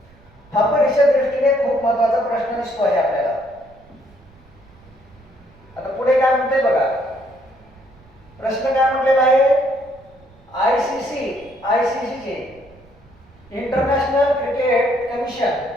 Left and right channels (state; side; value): noise; right; rumble, 27 dB below the sound